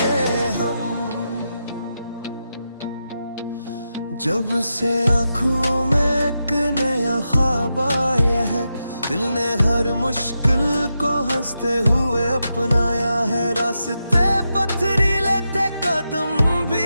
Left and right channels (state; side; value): inverted; both; correlation -0.87